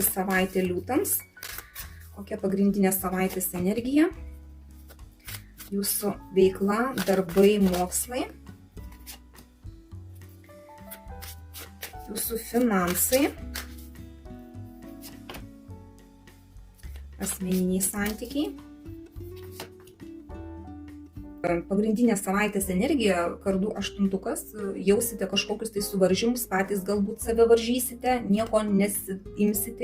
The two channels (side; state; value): both; identical; correlation 1.00